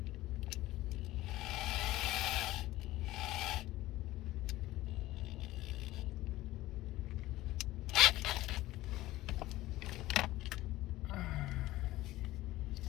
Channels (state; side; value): quieter; right; 16.8 dB